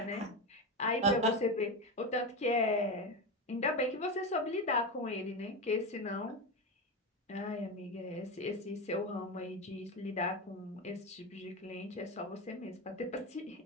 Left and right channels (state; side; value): normal; both; correlation 0.17